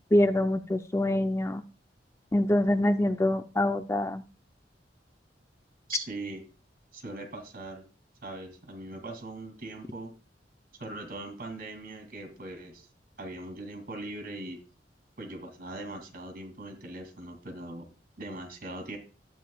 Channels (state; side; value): normal; both; correlation 0.86